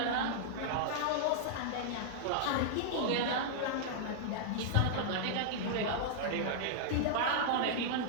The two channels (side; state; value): both; different; correlation -0.01